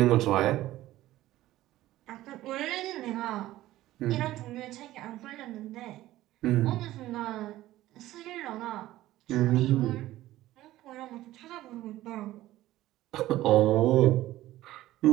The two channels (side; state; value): left; quieter; 15.4 dB